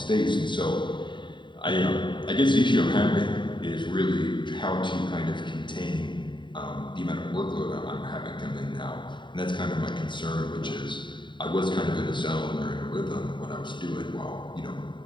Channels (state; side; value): late; right; 0.23 ms